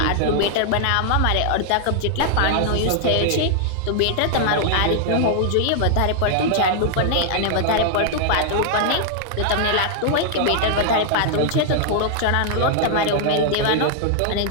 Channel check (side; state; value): both; different; correlation 0.00